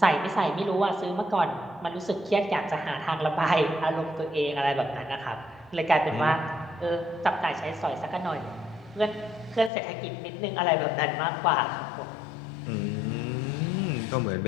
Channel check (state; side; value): drops out; right; at 9.7 s